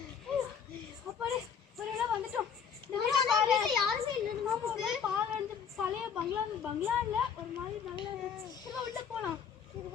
அப்படி ஒருவேளை வந்துட்டோம். யாருமே இல்லை நமக்கு. பாலந்து பழைய பங்களா இல்ல ஒரு மாதிரி நல்லா இருந்துச்சு. உள்ள போலாம்.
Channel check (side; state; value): right; quieter; 7.2 dB